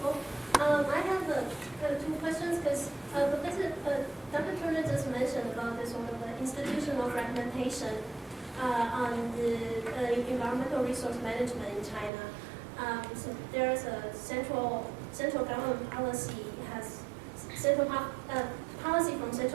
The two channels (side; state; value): left; drops out; at 12.1 s